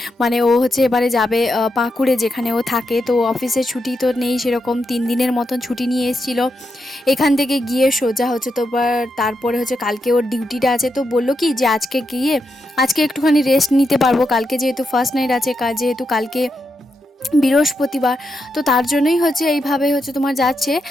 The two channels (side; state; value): both; normal; correlation 0.84